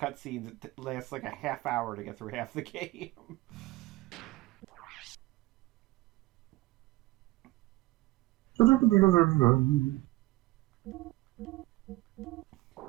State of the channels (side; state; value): left; quieter; 19.7 dB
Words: it lasts, like, a half hour to get through half the game. Started